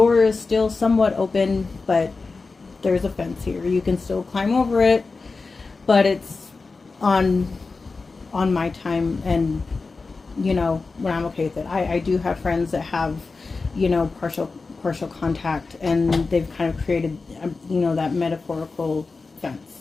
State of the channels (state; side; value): quieter; right; 4.1 dB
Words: is still somewhat open, but there's a fence here. You can still climb over it, but it's on my time, and you know, when I'm okay with it. I do have friends that have, you know, partial contact, and they've kind of created, you know, that metaphorical